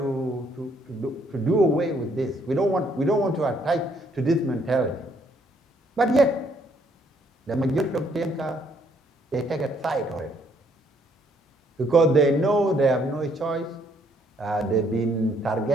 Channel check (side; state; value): both; normal; correlation 0.68